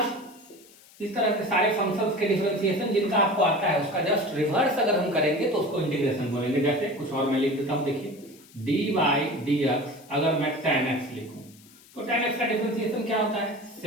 इस तरह से सारे फंक्शंस के डिफरेंशिएशन जिनका आपको आता है उसका जस्ट रिवर्स अगर हम करेंगे तो उसको इंटीग्रेशन बोलेंगे। जैसे कुछ और मैं लिख देता हूं, देखिए d बाई डी एक्स, अगर मैं tan x लिखूं तो tan x का डिफरेंशिएशन क्या होता है,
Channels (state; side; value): noise; left; hiss, 25 dB below the sound